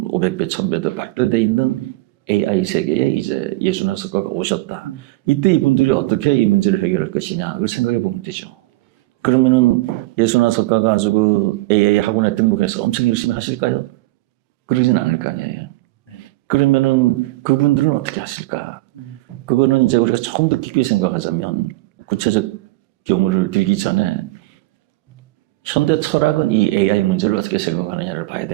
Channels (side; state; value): left; quieter; 19.8 dB